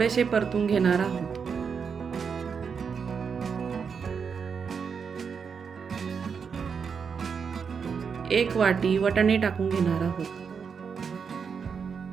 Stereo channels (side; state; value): left; quieter; 6.2 dB